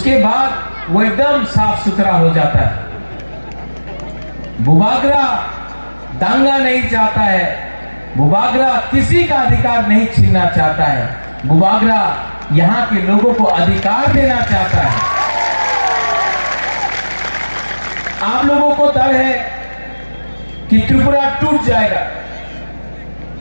बाद वो एकदम साफ सुथरा हो जाता है। बुबागरा दांगा नहीं चाहता है, बुबागरा किसी का अधिकार नहीं छीनना चाहता है, बुबागरा यहां के लोगों को अधिकार देना चाहता है। आप लोगों को डर है कि त्रिपुरा टूट जाएगा।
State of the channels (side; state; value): both; inverted; correlation -1.00